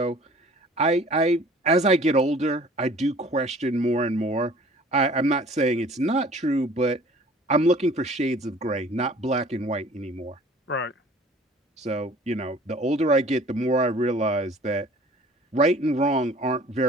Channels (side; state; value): both; normal; correlation 0.49